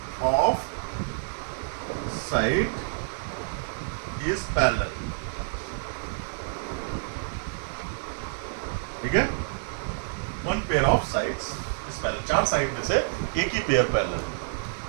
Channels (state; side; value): silent; left; digital silence